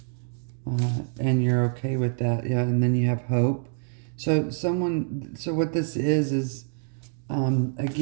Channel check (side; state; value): left; silent; digital silence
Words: And you're okay with that. Yeah, and then you have hope. So what this is